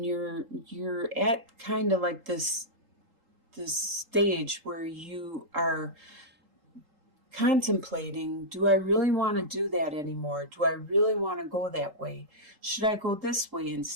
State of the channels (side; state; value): left; late; 3.8 ms